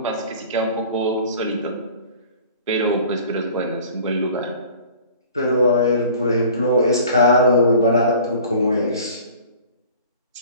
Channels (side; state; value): both; inverted; correlation -0.46